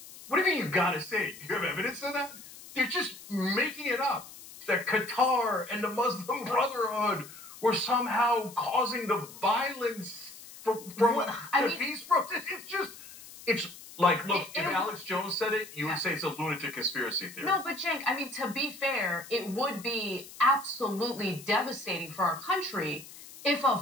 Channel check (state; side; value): noise; left; hiss, 17 dB below the sound